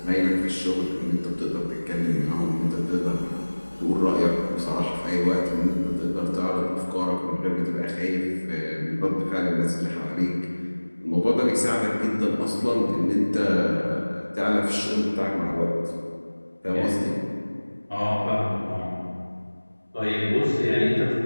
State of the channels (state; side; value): inverted; both; correlation -1.00